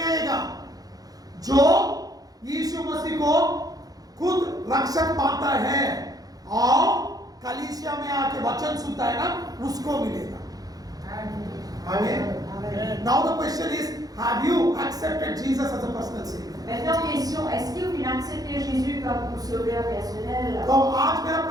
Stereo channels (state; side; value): late; left; 0.18 ms